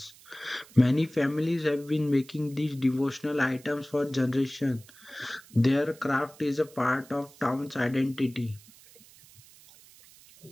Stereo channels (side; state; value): right; noise; hiss, 24 dB below the sound